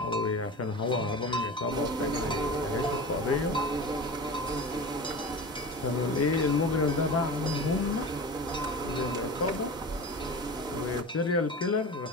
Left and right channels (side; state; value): both; normal; correlation 0.32